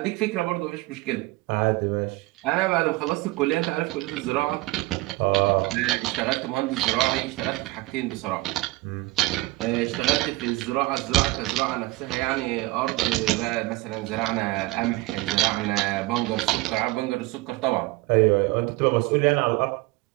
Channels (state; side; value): quieter; left; 20.3 dB